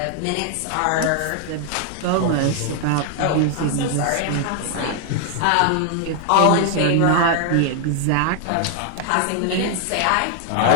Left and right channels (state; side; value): different; both; correlation 0.00